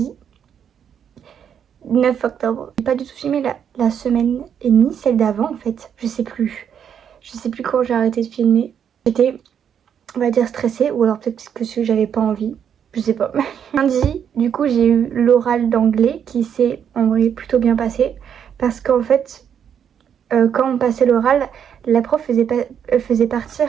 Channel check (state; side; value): quieter; left; 8.3 dB